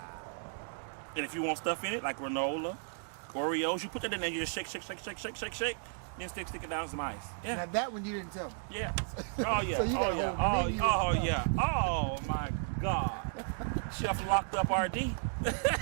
And if you want stuff in it like granola, Oreos, you put that in there. You just shake, then stick it down some ice. Yeah. Now that one you didn't tell me. Yeah. Oh yeah. So you got a whole menu of stuff. Yeah. Oh my God. Chef locked up RD.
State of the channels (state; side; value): silent; left; digital silence